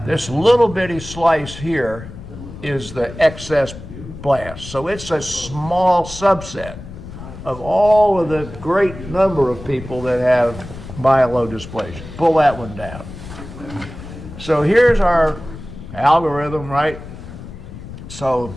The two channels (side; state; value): left; noise; rumble, 13 dB below the sound